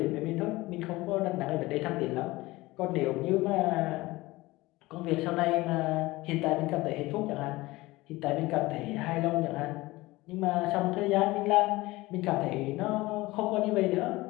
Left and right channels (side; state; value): right; quieter; 20.0 dB